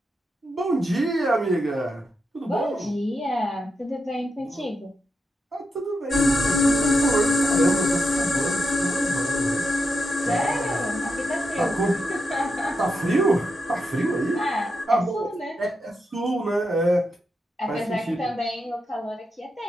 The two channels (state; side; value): normal; both; correlation 0.85